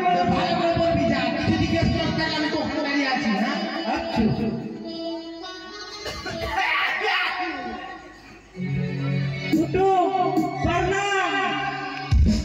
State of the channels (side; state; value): both; identical; correlation 1.00